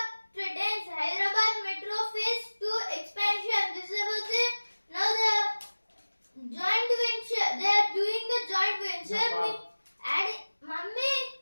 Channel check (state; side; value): inverted; both; correlation -1.00